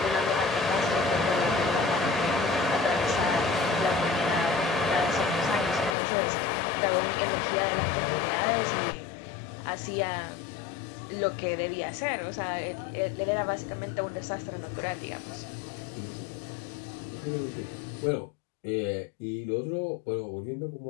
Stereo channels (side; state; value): right; drops out; at 6.0 s